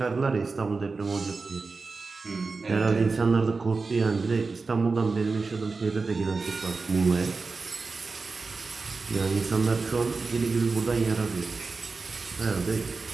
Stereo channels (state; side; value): quieter; left; 4.2 dB